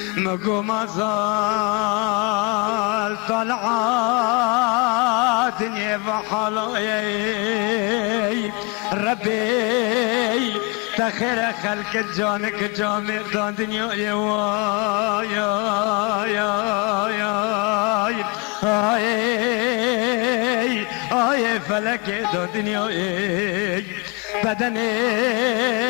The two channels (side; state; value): right; quieter; 28.0 dB